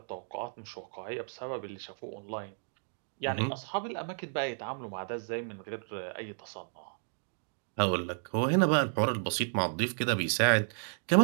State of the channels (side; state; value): left; silent; digital silence